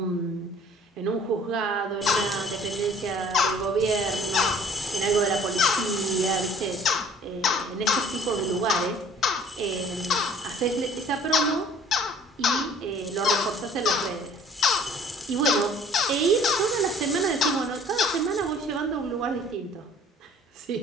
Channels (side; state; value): both; normal; correlation 0.53